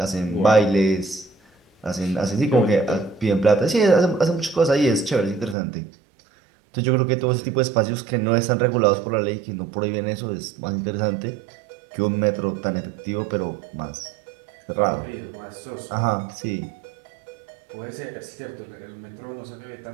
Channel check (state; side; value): drops out; left; at 5.6 s